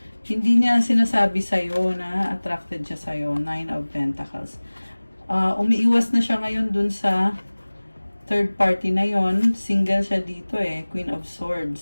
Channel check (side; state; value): both; inverted; correlation -1.00